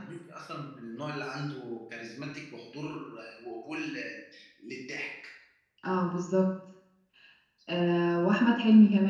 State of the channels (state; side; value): identical; both; correlation 1.00